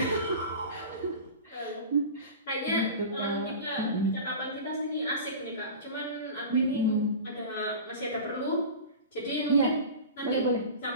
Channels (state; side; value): inverted; both; correlation -0.34